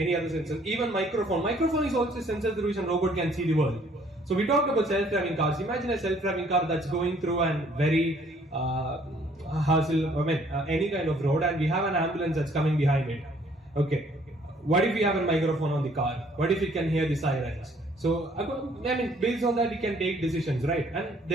other sensors, even microphone. Microphone is also a sensor through which a robot can see the world. So we talked about self-driving cars. Imagine a self-driving car that's going through a very any kind of road, and we have an ambulance that's coming behind it. Okay, what if we have a microphone on the car? What if it can hear the sirens? So based on that, we can take decisions, right? And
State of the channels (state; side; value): normal; both; correlation 0.61